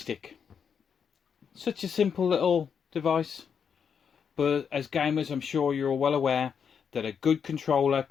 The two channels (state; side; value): quieter; right; 7.0 dB